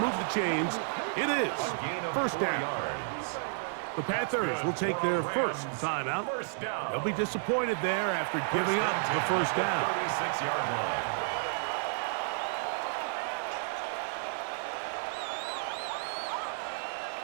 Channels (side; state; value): left; silent; digital silence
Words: the chains. It is 1st down. The Panthers will take their first timeout. They'll be disappointed there after giving up the 1st down. 36-yard line.